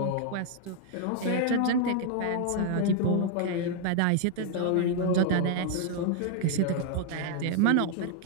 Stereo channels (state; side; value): different; both; correlation 0.00